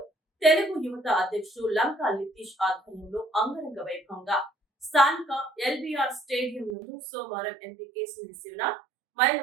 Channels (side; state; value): left; drops out; at 6.8 s